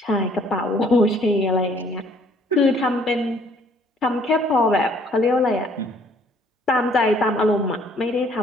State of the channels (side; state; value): both; normal; correlation 0.60